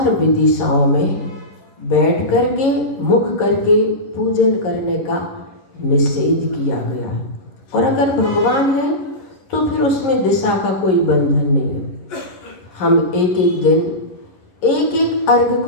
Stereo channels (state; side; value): late; right; 11 ms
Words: दिशाओं में बैठ करके मुख करके पूजन करने का निषेध किया गया है। और अगर भगवान है तो फिर उसमें दिशा का कोई बंधन नहीं है। हम एक एक दिन एक एक अर्घ